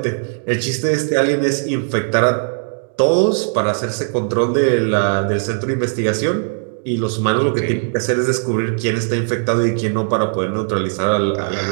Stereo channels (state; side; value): silent; left; digital silence